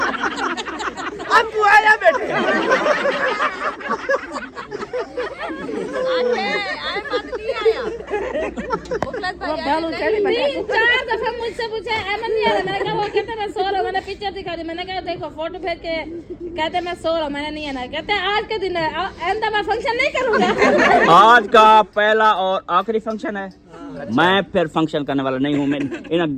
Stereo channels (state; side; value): identical; both; correlation 1.00